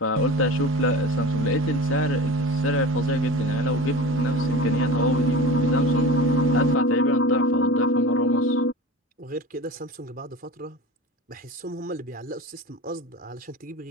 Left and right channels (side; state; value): both; normal; correlation 0.34